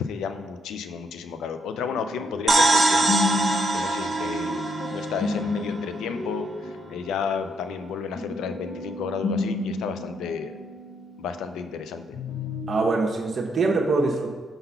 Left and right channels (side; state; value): both; normal; correlation 0.75